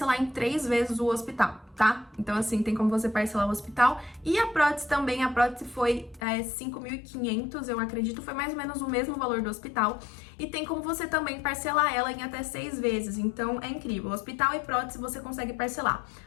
em 3 vezes o hospital, tá? Então assim, tem como você parcelar o hospital. E a prótese também, a prótese foi 5.500, eu acredito, foi mais ou menos o mesmo valor do hospital. E tem como você também parcelar ela em até 6 vezes, então é incrível. Hospital e prótese você consegue parcelar.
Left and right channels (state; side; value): drops out; right; at 6.2 s